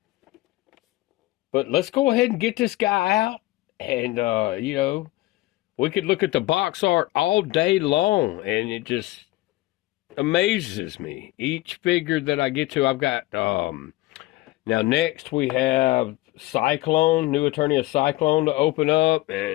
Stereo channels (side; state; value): right; quieter; 18.6 dB